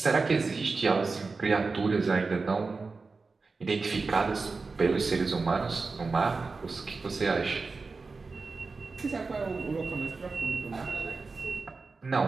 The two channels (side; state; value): left; quieter; 4.1 dB